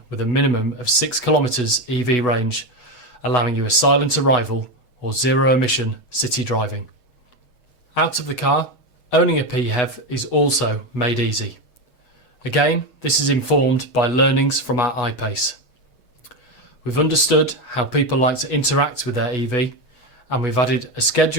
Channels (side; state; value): right; late; 6.4 ms